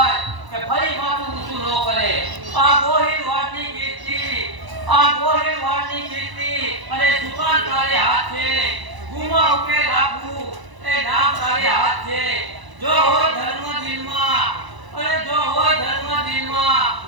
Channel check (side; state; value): left; late; 1.0 ms